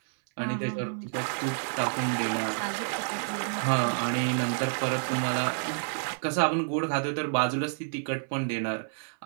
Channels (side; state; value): left; silent; 58 dB below the other